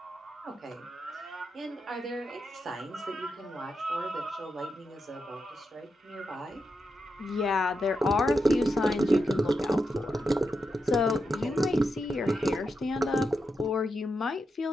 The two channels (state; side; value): normal; both; correlation 0.86